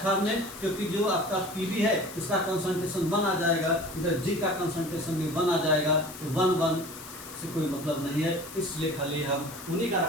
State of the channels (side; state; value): left; noise; hiss, 14 dB below the sound